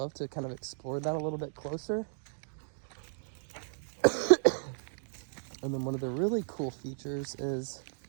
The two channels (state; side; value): silent; left; digital silence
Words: to kind of explore that a little bit closer. And then one of the really cool features is